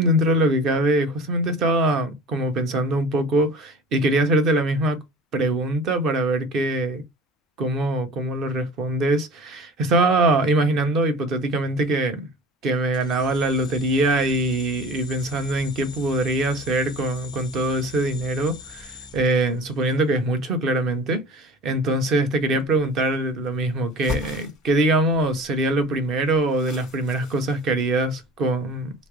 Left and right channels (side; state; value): both; normal; correlation 0.40